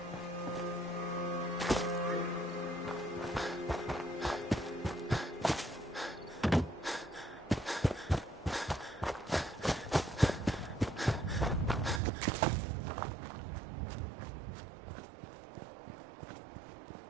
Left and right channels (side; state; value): left; drops out; at 12.0 s